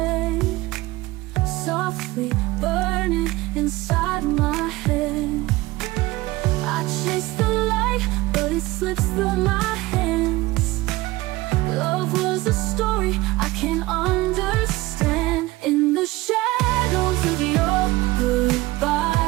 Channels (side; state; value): left; quieter; 19.6 dB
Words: softly burning inside my head. I chase the light, but it slips through my hands. Love was a story I can't understand. In the shadows of your